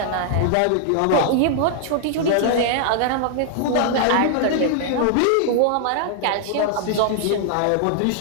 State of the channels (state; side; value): different; both; correlation 0.00